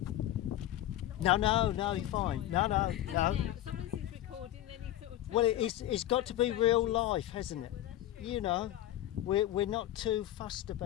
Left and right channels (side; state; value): right; quieter; 13.4 dB